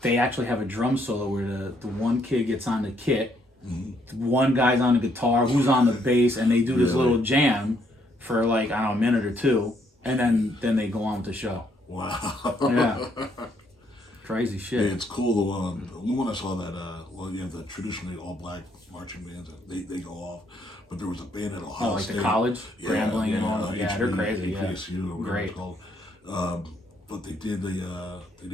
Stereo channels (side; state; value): both; normal; correlation 0.71